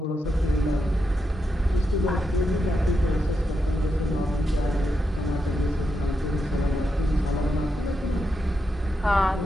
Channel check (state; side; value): normal; both; correlation 0.84